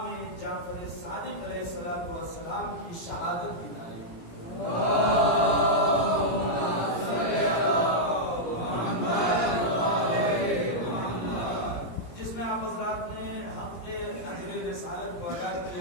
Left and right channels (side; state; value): right; late; 17 ms